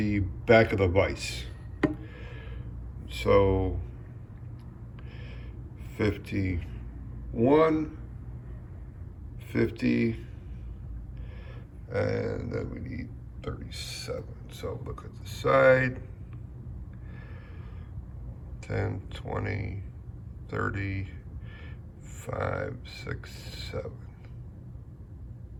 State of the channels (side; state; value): both; identical; correlation 1.00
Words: back of the vise. So 51, 50, and then we need 37. So look at the side. 10, 20, 30, 5, 6, 7.